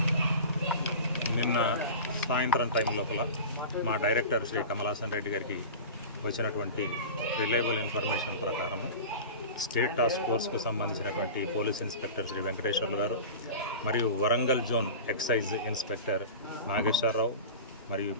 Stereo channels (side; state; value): both; inverted; correlation -0.32